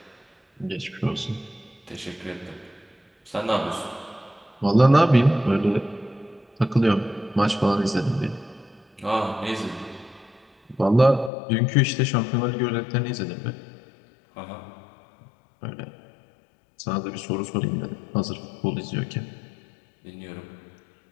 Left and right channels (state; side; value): drops out; right; at 11.3 s